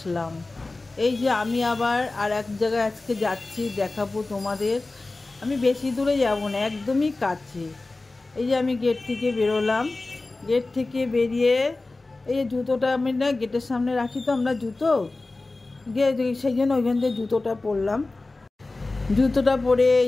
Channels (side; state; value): right; quieter; 3.2 dB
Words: এই যে আমি আবার আর এক জায়গায় আজকে যাচ্ছি, দেখাবো তোমাদের। আমি বেশি দূরে যাব না, একদমই কাছে। এই যে আমি গেট থেকে বেরোলাম, গেট থেকে বেরিয়ে এই যে জুতোটা আমি না গেটের সামনে রাখি, তো আমরা জুতো সেই জন্য ওইখান থেকে জুতোটা পরলাম। জুতোটা পরে